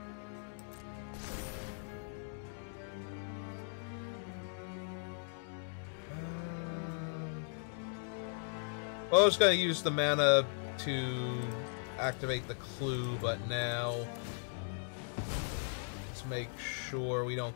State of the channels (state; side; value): silent; right; digital silence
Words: Well, I was going to use the mana to activate the clue, but now let's make sure we don't